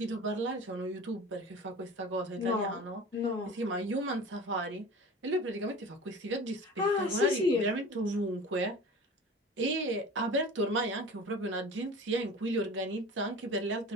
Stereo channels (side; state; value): both; normal; correlation 0.38